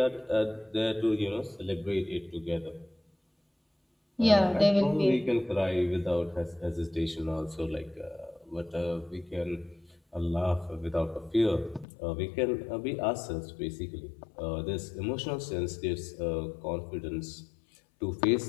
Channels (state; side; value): drops out; right; at 11.9 s